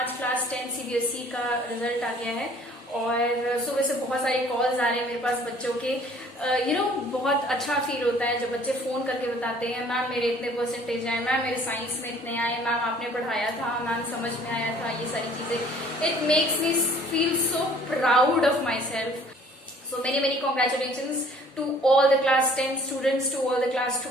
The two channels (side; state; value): both; normal; correlation 0.54